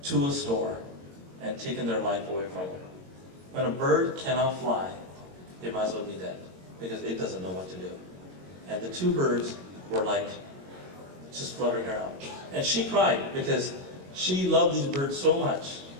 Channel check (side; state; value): left; late; 22 ms